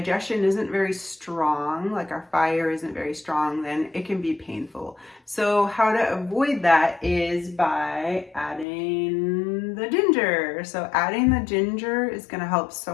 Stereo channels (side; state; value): right; drops out; at 8.7 s